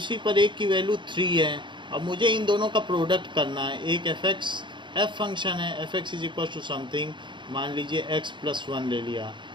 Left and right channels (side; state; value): left; late; 0.23 ms